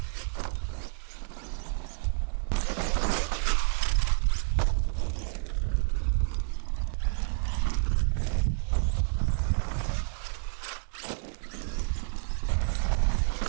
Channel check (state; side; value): silent; left; digital silence